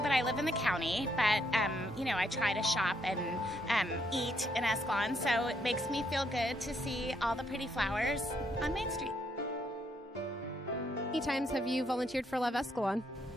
I live in the county, but I try to shop and eat in Escalon, so it makes me feel good to see all the pretty flowers on Main Street. How many times have you volunteered for Love Escalon?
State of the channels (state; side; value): normal; both; correlation 0.74